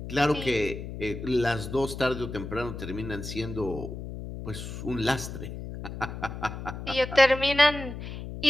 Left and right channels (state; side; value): noise; left; hum, 9 dB below the sound